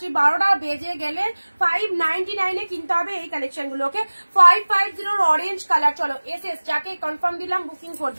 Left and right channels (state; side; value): inverted; both; correlation -1.00